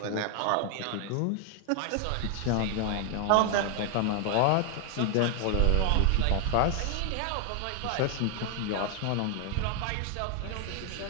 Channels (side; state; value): both; different; correlation 0.00